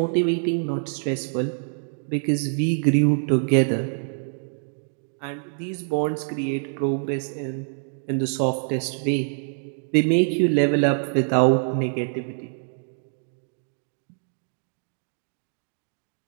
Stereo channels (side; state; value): left; silent; digital silence